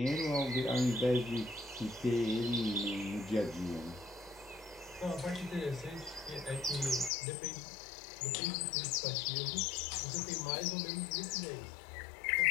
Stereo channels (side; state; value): right; drops out; at 7.1 s